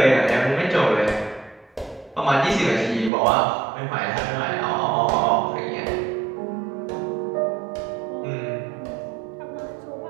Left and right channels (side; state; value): left; drops out; at 3.1 s